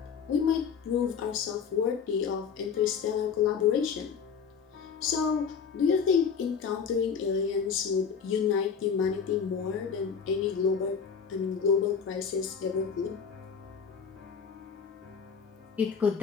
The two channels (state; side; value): quieter; right; 6.4 dB